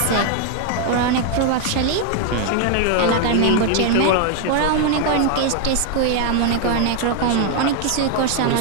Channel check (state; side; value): different; both; correlation 0.00